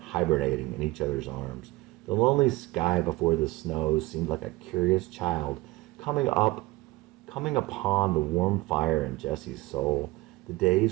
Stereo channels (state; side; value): quieter; left; 20.4 dB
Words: in each other's arms. The lonely sky before the snows seemed like a curious child coming upon the warm fire in Jesse's soul. The